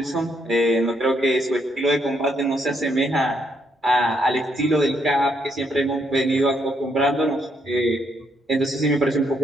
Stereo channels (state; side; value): normal; both; correlation 0.74